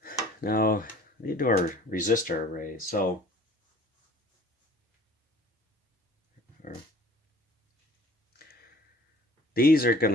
Now, we need to do our resistor arrays. So, these are going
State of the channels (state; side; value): normal; both; correlation 0.50